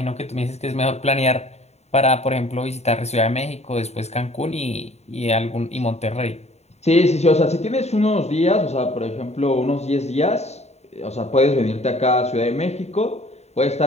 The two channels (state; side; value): late; right; 0.32 ms